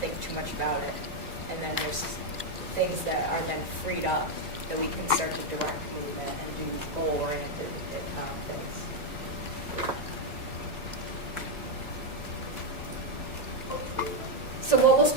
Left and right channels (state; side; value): late; left; 2.0 ms